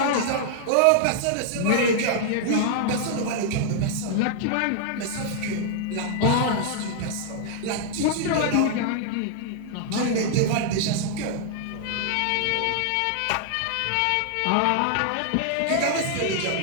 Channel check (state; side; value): different; both; correlation -0.01